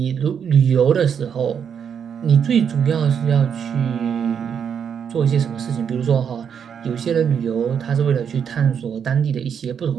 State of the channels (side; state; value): left; quieter; 7.6 dB